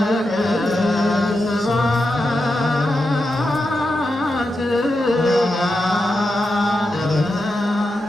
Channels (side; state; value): both; normal; correlation 0.88